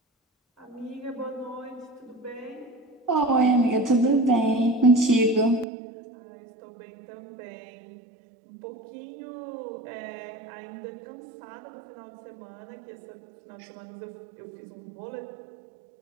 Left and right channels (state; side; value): drops out; left; at 5.7 s